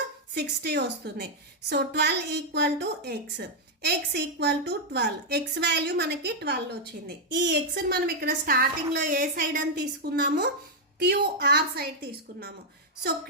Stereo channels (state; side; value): normal; both; correlation -0.02